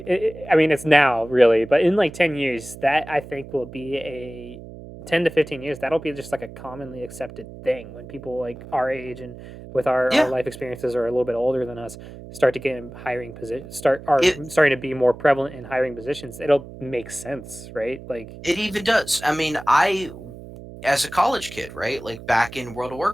I mean, it's now really, but in like 10 years, that I think will be a 10 to 15 years, that'll be just like a commonly accepted thing when people like our age and with our yeah, life experiences are a little bit older than us start to get in hiring position start are it starting to be more prevalent in hiring positions. It'll make sense, right? Like, it even does. I mean, I as a college kid, right? Like back in World of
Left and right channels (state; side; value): noise; right; hum, 15 dB below the sound